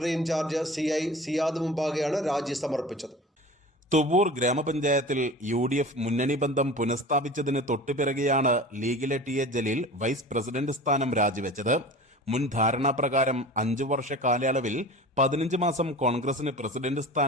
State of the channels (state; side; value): normal; both; correlation 0.37